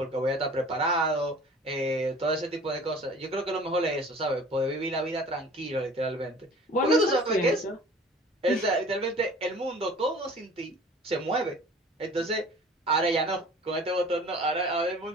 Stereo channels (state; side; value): normal; both; correlation 0.46